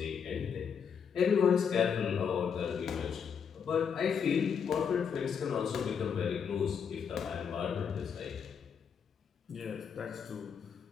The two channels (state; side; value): quieter; right; 7.0 dB